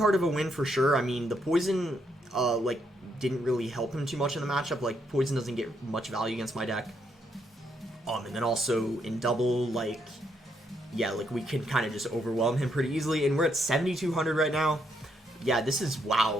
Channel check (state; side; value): normal; both; correlation 0.76